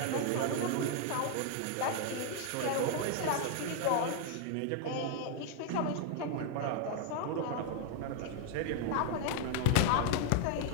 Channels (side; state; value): both; different; correlation 0.00